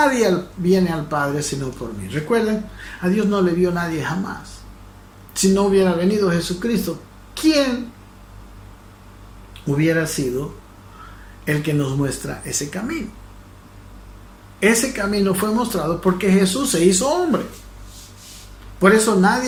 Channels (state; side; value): identical; both; correlation 1.00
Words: viene al Padre sino por mí. Recuerden, a Dios no le vio nadie jamás. Si no hubiera venido Jesucristo, ¿quién hubiera sido el que nos muestra ese camino? Ese camino fue mostrado porque Jesús se hizo hombre. Por eso